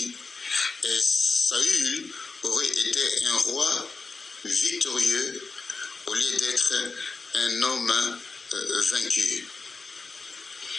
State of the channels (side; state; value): right; quieter; 4.1 dB